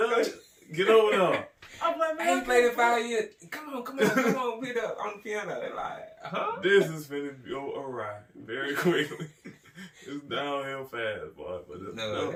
get over there. I'm like, man, I ain't played in 5 years. Come on, beat up on the piano. They're like, huh? This is finna go awry very quickly. It's downhill fast, boy. But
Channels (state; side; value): identical; both; correlation 1.00